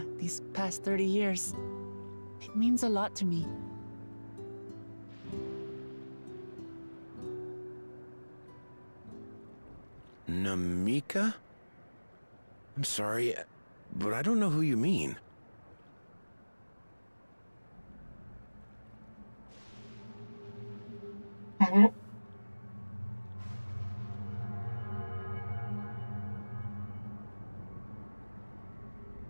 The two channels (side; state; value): both; inverted; correlation -1.00